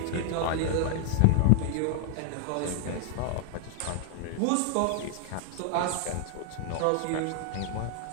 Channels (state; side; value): different; both; correlation 0.00